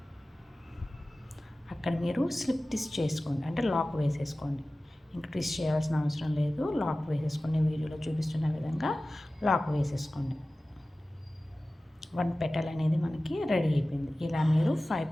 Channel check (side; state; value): both; normal; correlation 0.96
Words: అక్కడ మీరు స్లిప్ ట్విస్ట్ చేసుకోండి, అంటే లాక్ వేసేసుకోండి. ఇంకా ట్విస్ట్ చేయాల్సిన అవసరం లేదు, లాక్ వేసేసుకోండి. వీడియోలో చూపిస్తున్న విధంగా లాక్ వేసేసుకోండి. 1 పెటల్ అనేది మనకి రెడీ అయిపోయింది. ఇలా మీరు 5